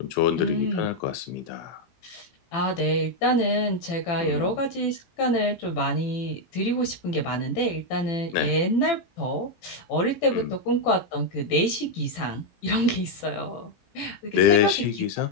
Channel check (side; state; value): right; late; 18 ms